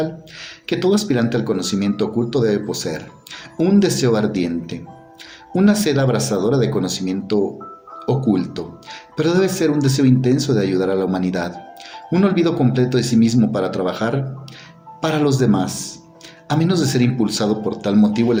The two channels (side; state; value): both; identical; correlation 1.00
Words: que todo aspirante al conocimiento oculto debe poseer: un deseo ardiente, una sed abrasadora de conocimiento oculto, pero debe ser un deseo intenso de ayudar a la humanidad, un olvido completo de sí mismo para trabajar para los demás. A menos de ser impulsado por tal motivo, el